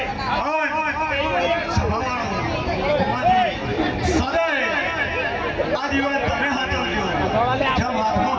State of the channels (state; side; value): identical; both; correlation 1.00